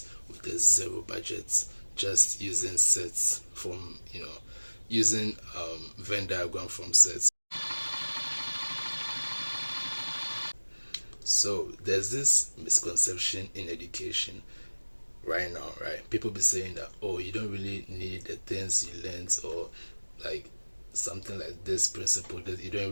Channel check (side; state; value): both; inverted; correlation -1.00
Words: with a zero budget, just using sets from, using Venn diagram from sets. So there's this misconception in education right now, right? People be saying that, oh, you don't really need the things you learned, or like something like this principle, that you don't